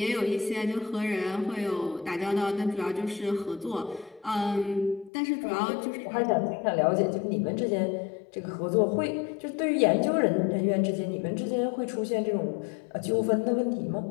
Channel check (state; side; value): drops out; right; at 5.1 s